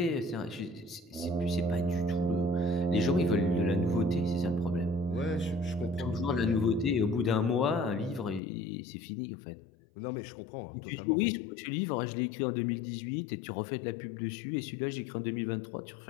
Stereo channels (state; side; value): drops out; right; at 8.4 s